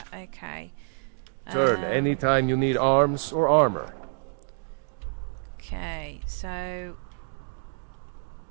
Okay. Turn anytime you need arms or armor. Okay, so...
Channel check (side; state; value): left; silent; digital silence